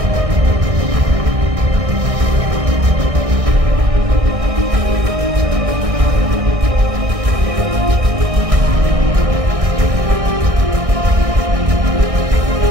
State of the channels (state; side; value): late; left; 1.6 ms